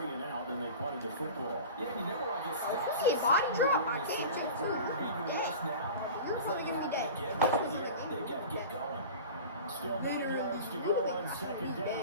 and out, and they punted the football. Yeah, you never like his stats. See, body drop, I can't Even do worse now. You're It's probably like gonna be dead. again right here. They got to get going. Still 9 yards to go on 2nd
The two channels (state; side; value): inverted; both; correlation -0.35